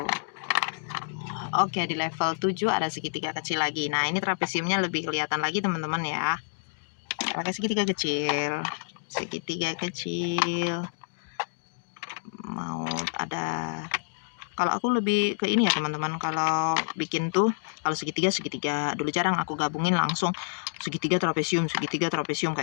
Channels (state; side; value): silent; right; digital silence